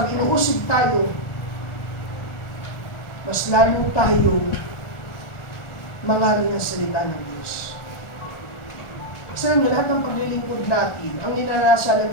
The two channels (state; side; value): late; right; 1.4 ms